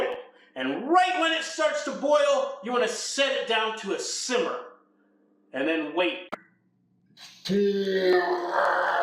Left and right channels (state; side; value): identical; both; correlation 1.00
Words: And right when it starts to boil, you want to set it down to a simmer. And then wait.